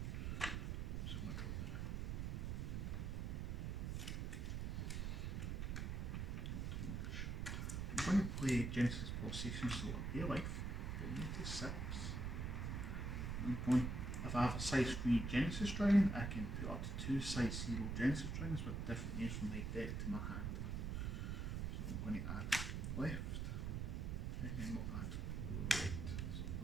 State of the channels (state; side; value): noise; right; rumble, 1 dB below the sound